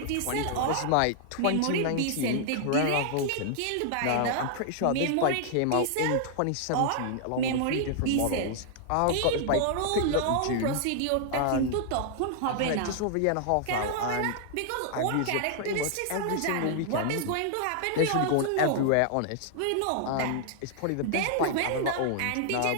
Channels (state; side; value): different; both; correlation -0.01